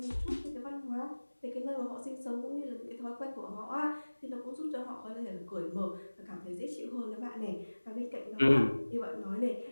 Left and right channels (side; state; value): both; inverted; correlation -1.00